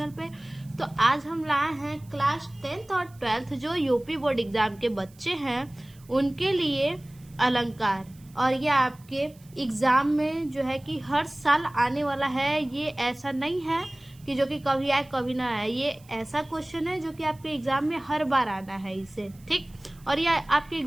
पे। तो आज हम लाए हैं क्लास 10th और 12th जो यूपी बोर्ड एग्जाम के बच्चे हैं उनके लिए अलंकार। और ये आपके एग्जाम में जो है कि हर साल आने वाला है। ये ऐसा नहीं है कि जो कि कभी आए कभी ना आए। ये ऐसा क्वेश्चन है जो कि आपके एग्जाम में हर बार आना है इसे, ठीक। और ये आपके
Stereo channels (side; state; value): right; noise; hiss, 27 dB below the sound